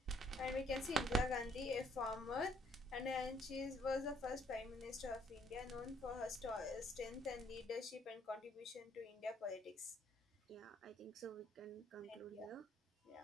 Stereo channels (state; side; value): normal; both; correlation 0.66